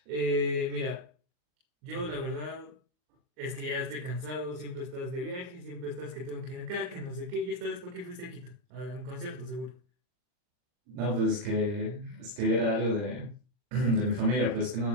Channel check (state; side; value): late; left; 39 ms